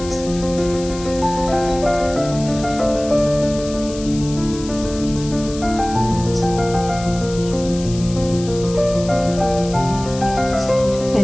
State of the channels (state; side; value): noise; left; hiss, 14 dB below the sound